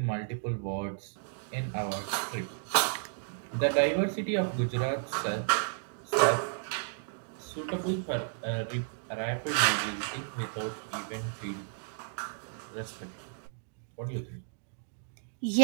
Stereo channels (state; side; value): silent; left; digital silence